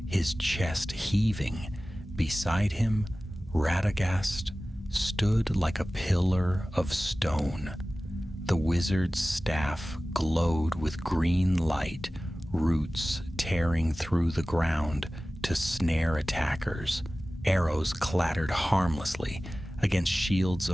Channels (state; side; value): normal; both; correlation 0.97